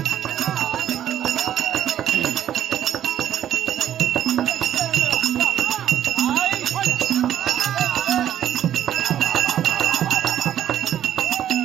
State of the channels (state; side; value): quieter; left; 10.9 dB